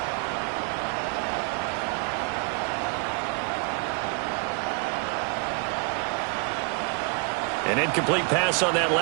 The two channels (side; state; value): left; quieter; 36.2 dB